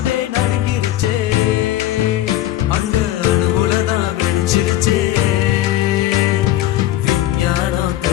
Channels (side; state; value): right; quieter; 13.9 dB